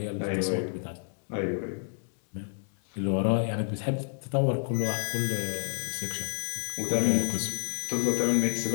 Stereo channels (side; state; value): right; silent; digital silence